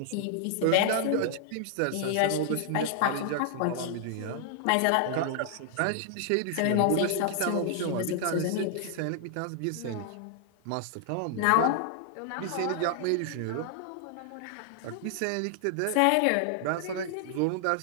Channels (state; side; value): different; both; correlation -0.01